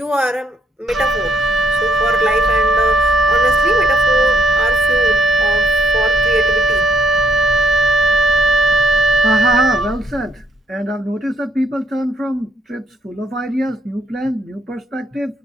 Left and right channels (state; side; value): normal; both; correlation 0.72